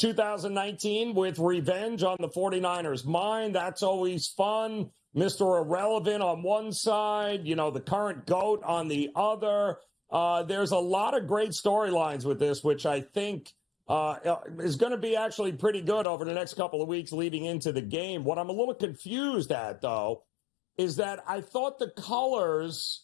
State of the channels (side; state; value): right; drops out; at 16.1 s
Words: with revenge on the 49ers' mind. That's always fun. Mr. Irrelevant on one side, the current GOAT on the other. There's a lot of great storylines with this, which I think is going to be actually pretty good over the next couple of weeks leading into the game. What I'm a little confused at, though, is that I thought the